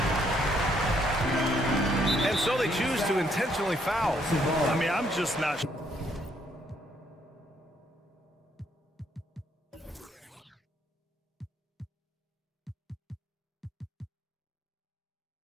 And so they choose to intentionally foul. I mean, I'm just not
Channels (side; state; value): both; normal; correlation 0.70